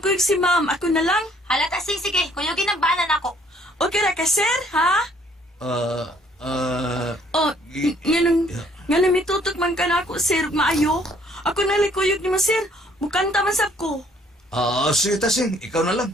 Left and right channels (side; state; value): both; normal; correlation 0.62